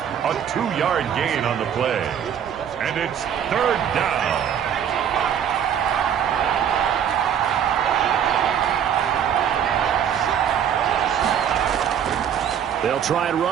A 2-yard gain on the play. And it's 3rd down. They'll try and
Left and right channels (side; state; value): left; quieter; 8.8 dB